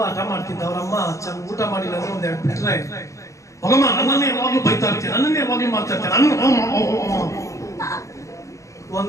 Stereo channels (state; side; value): late; right; 0.15 ms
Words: ಹಠ ಮಾಡ್ತಿದ್ದ, ಅವ್ರಮ್ಮ ಚೆನ್ನಾಗಿ ಊಟ ಮಾಡಿಲ್ಲ ಅಂದ್ರೆ ಒಂದ್ ಎರಡು ಬಿಟ್ರೆ, ಹೋಗಮ್ಮ ನನ್ನನ್ನೇ ಯಾವಾಗ್ಲೂ ಬೈತಾ ಇರ್ತೀನಿ, ನನ್ನನ್ನೇ ಯಾವಾಗ್ಲೂ ಮಾಡ್ತಾ ಇರ್ತೀನಿ.